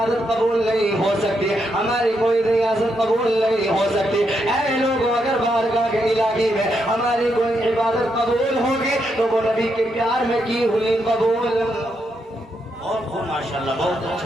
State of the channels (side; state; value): both; normal; correlation 0.80